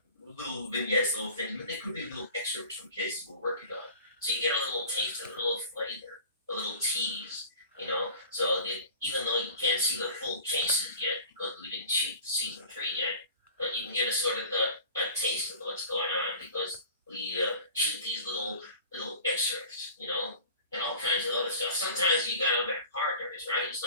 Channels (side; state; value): both; inverted; correlation -0.41